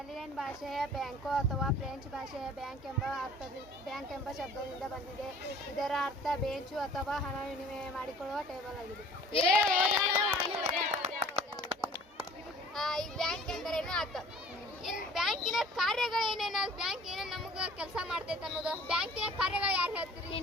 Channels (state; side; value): normal; both; correlation 0.49